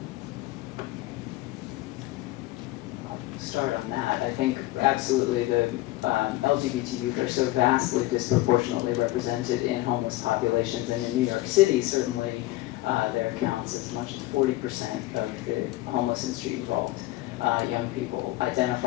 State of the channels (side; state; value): right; quieter; 17.6 dB